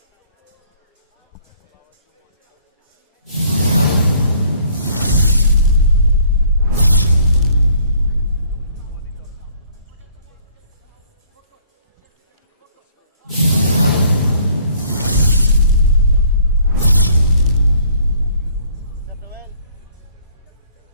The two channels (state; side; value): inverted; both; correlation -0.59